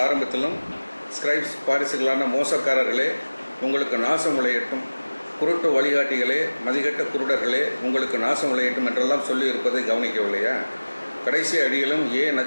ஆரம்பத்திலும் ஸ்கிரைப்ஸ், பாரிசுகளான மோசக்காரர்களே உங்களுக்கு நாசம் விளையட்டும், குருட்டு வழிகாட்டிகளே, மதிகட்ட குருடர்களே உங்களுக்கு நாசம் விளையட்டும் என்றெல்லாம் சொல்லியிருப்பதை கவனிக்கவில்லையா? கடைசி அடியிலும்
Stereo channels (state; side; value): inverted; both; correlation -1.00